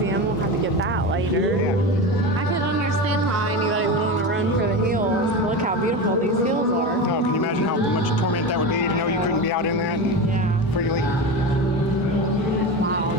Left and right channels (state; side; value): normal; both; correlation 0.23